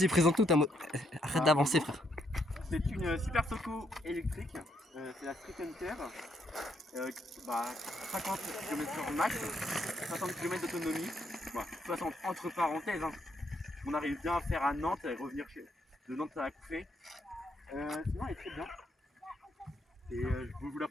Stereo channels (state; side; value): normal; both; correlation 0.75